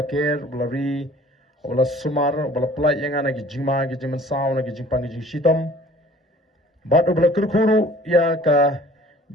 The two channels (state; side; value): normal; both; correlation 0.50